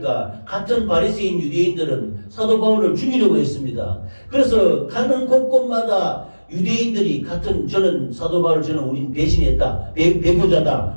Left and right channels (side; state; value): both; inverted; correlation -1.00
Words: 같은 바리새인 유대인들은 사도 바울을 죽이려고 했습니다. 그래서 가는 곳곳마다 유대인들이 같은 저는 사도 바울 저는 우린 배신했다,